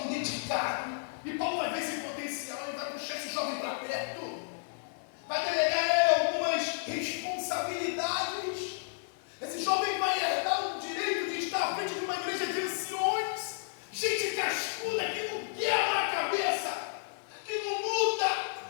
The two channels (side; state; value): right; silent; 56 dB below the other